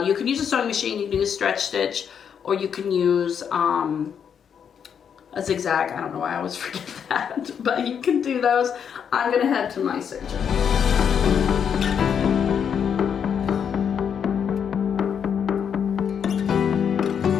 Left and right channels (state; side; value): quieter; right; 7.7 dB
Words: you can use a sewing machine, you can use a stretch stitch, or you can use a zigzag. I don't know why I always forget that, but you can do those. I'm gonna head to my serger.